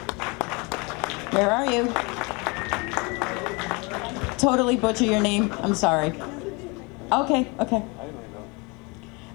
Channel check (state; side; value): quieter; right; 28.6 dB